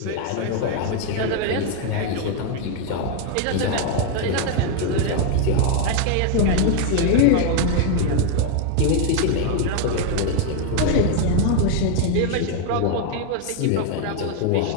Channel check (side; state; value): both; different; correlation 0.01